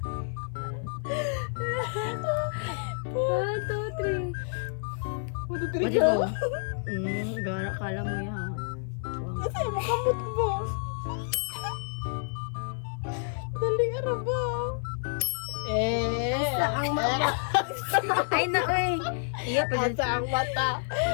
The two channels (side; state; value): right; silent; 57 dB below the other